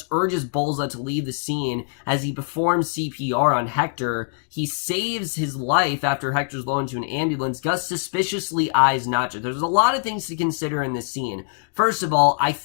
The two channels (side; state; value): right; silent; 63 dB below the other